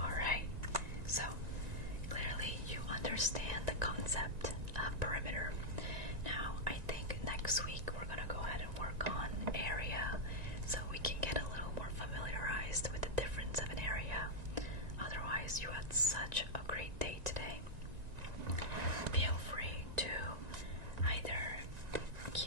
So, clearly you understand the concept of perimeter. Now, I think next week we're going to go ahead and work on area so we can get a little more familiarized with the difference of an area. Otherwise, you had such a great day today. Feel free to either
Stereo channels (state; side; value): late; left; 1.9 ms